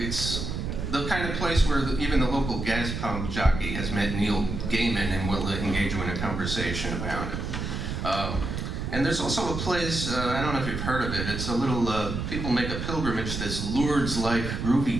the kind of place where even the local gas pump jockey has met Neil Gaiman and will engage you in a conversation about it. And there's also a place, I don't know if you've heard of it, it's a little, people make a pilgrimage to this Lourdes-like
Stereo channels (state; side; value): noise; right; rumble, 4 dB below the sound